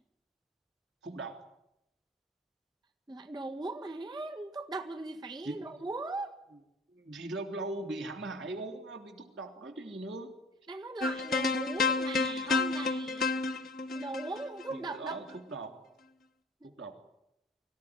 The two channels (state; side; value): normal; both; correlation 0.45